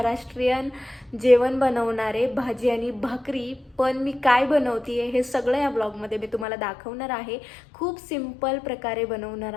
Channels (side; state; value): right; drops out; at 6.5 s